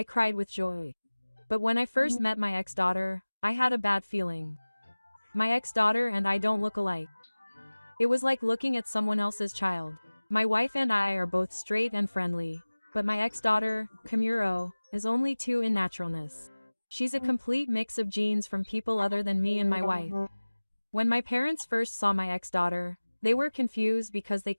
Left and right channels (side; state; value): both; inverted; correlation -1.00